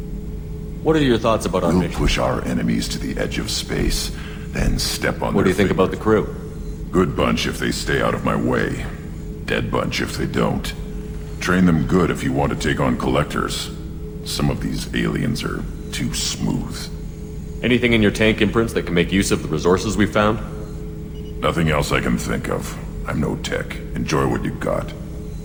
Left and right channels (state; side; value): identical; both; correlation 1.00